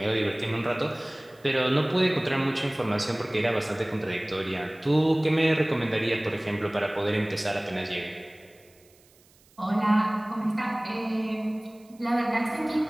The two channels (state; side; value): noise; right; hiss, 30 dB below the sound